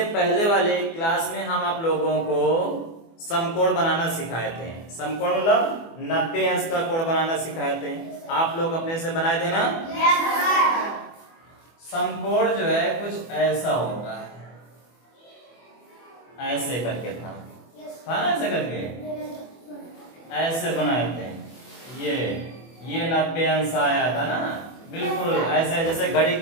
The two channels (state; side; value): late; right; 24 ms